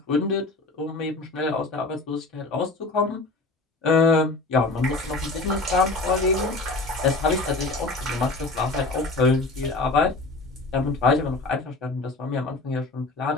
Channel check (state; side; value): quieter; right; 3.2 dB